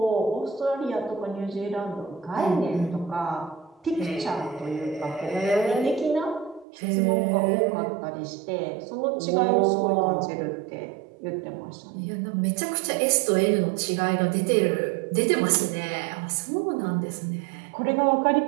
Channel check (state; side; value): drops out; left; at 6.7 s